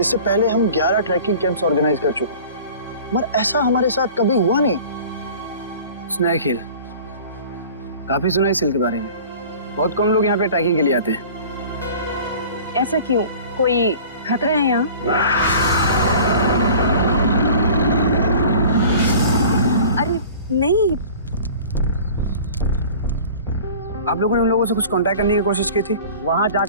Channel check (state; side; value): inverted; both; correlation -0.43